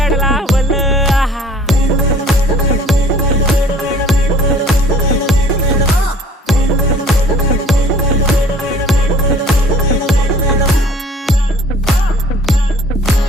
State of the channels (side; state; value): both; normal; correlation 0.52